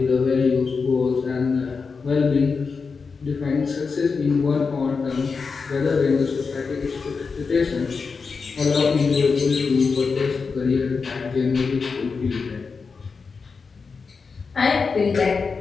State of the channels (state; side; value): quieter; right; 5.0 dB